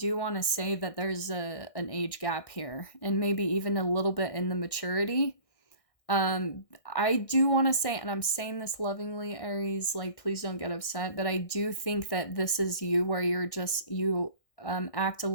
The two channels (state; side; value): late; right; 1.6 ms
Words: want to say that there's an age gap here, and maybe even a little bit in the maturity. I do want to say, and I'm saying this lovingly, Aries, like, please don't get upset, but I do think that this is you, where you're just, you act a